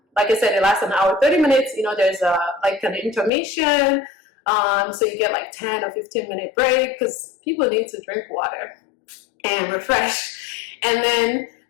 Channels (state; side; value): drops out; right; at 3.3 s